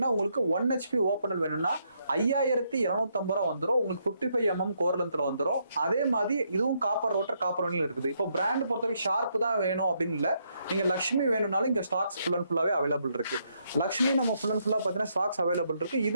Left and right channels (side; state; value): both; inverted; correlation -0.76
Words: உங்களுக்கு 1 HP ஓப்பனல் வேணும்னா 5250 வந்துடும். உங்களுக்கு 55 mm கோர் லென்த்ல வந்துடும். அதே மாதிரி இதுவும் காப்பர் ரோட்டர், காப்பர் வைண்டிங்ல இருக்குது. இப்போ பிராண்ட் பொறுத்த வரைக்கும் ஷார்ப் தான் வேணும் அப்படின்னு இல்லை, நீங்க லக்ஷ்மி வேணும்னாலும் இங்க ஸ்டாக்ஸ் ஃபுல் அண்ட் ஃபுல்லாவே அவைலபிள் இருக்கு. லக்ஷ்மி நம்ம ஃபுல் அண்ட் ஃபுல்லா பார்த்தீங்கன்னா ஸ்டாக்ஸ் அவைலபிள் இருக்கு.